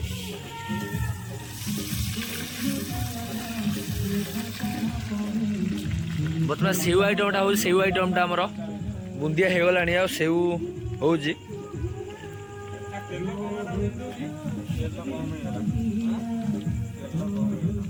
बर्तमान सेव आइटमटा हो सेव आइटमटा आमर बुंदिया हो गलानी आ सेव हो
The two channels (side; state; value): both; identical; correlation 1.00